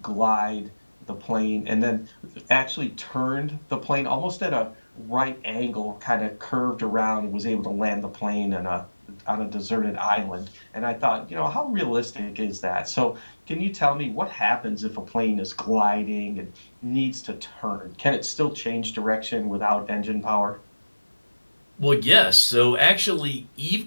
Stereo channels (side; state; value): both; inverted; correlation -1.00